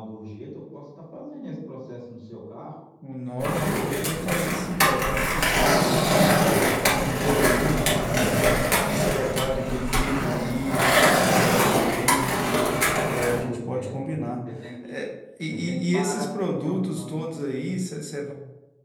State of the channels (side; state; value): both; identical; correlation 1.00